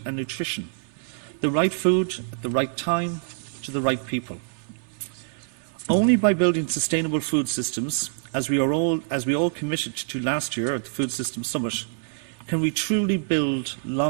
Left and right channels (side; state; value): left; silent; 59 dB below the other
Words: and nutrition, the right food at the right time to the right people. Only by building sustainable food systems as we all committed to last year at the Food Systems Summit, can we truly build